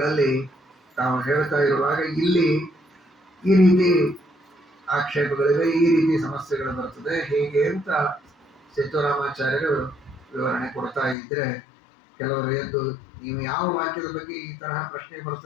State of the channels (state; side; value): drops out; right; at 11.2 s